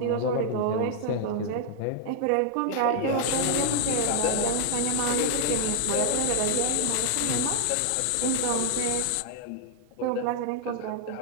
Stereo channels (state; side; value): different; both; correlation -0.01